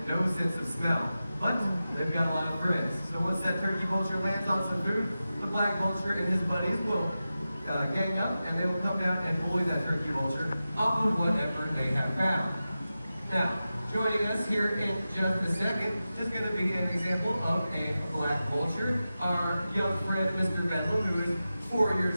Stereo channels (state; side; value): inverted; both; correlation -0.93